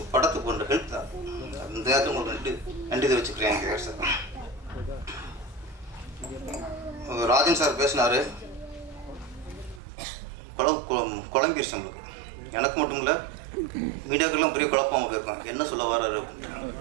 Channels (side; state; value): left; drops out; at 9.8 s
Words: படத்துக்கு கொண்ட ஹெல்ப் தான். அந்த நேரத்தில் உங்களுக்கு நன்றி தெரிவிச்சுக்கிறேன் கேஆர் சார். ராஜன் சார் பேசினார், குழம்பிடுச்சு நம்மளுக்கு. எனக்கு மட்டும் இல்லை, மீடியாக்கெல்லாம் பெரிய குழப்பமாக போயிருக்கோம், என்ன சொல்ல வர்றாரு.